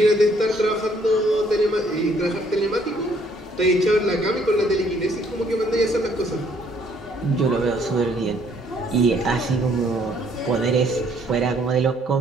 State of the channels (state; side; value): normal; both; correlation 0.65